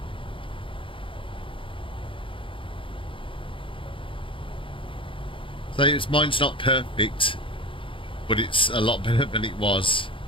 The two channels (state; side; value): late; right; 0.25 ms